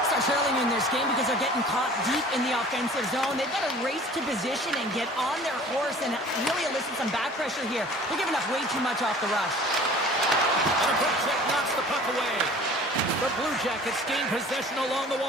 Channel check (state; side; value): normal; both; correlation 0.47